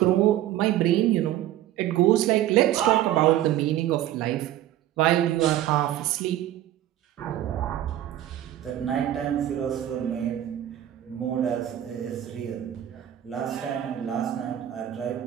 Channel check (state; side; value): quieter; left; 12.6 dB